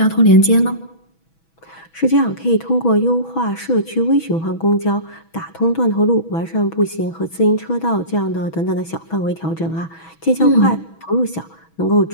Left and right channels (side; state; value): right; late; 6.1 ms